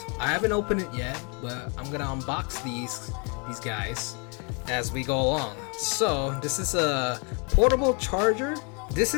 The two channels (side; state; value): right; quieter; 34.8 dB